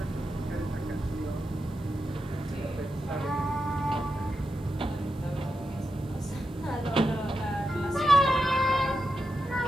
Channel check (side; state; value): both; normal; correlation 0.88